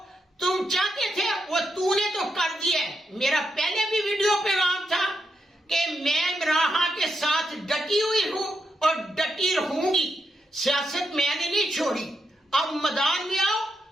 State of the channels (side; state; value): both; normal; correlation 0.84